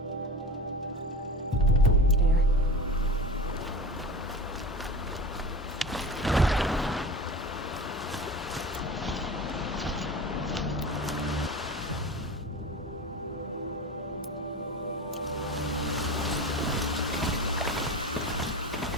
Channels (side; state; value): both; normal; correlation 0.32